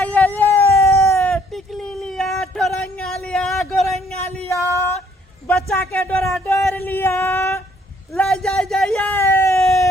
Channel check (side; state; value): both; normal; correlation 0.64